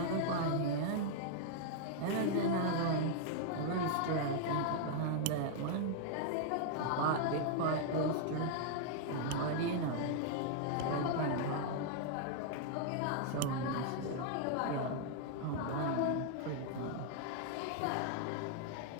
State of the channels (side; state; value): both; different; correlation -0.01